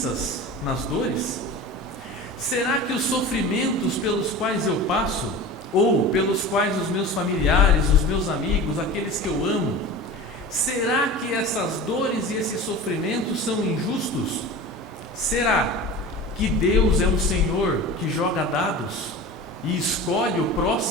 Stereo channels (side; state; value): both; normal; correlation 0.34